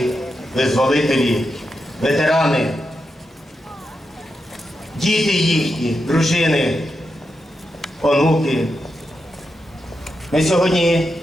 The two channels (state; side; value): normal; both; correlation 0.87